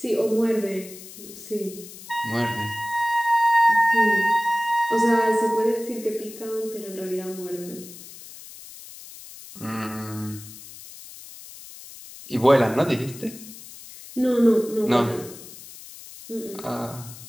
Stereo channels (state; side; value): noise; left; hiss, 16 dB below the sound